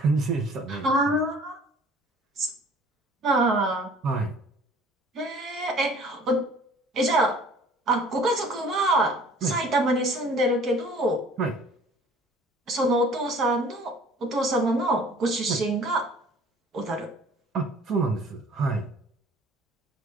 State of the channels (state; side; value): normal; both; correlation 0.51